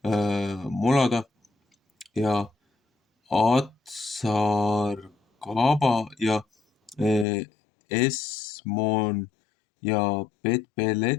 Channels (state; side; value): drops out; right; at 7.2 s